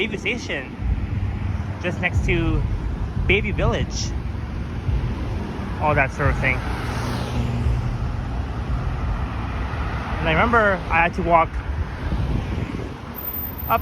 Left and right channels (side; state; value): both; identical; correlation 1.00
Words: Station, just next to Bayview Village, all that sort of thing. And I remember I had to walk up